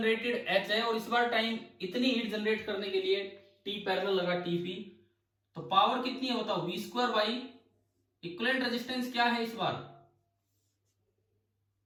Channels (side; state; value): both; identical; correlation 1.00